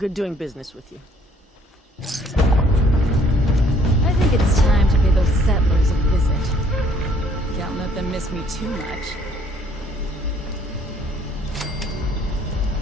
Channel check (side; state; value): both; normal; correlation 0.61